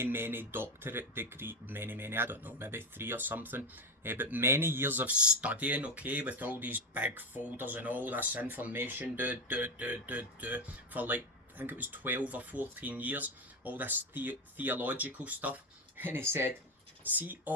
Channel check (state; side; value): normal; both; correlation 0.15